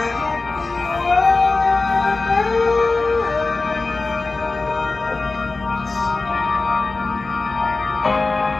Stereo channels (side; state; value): right; quieter; 3.6 dB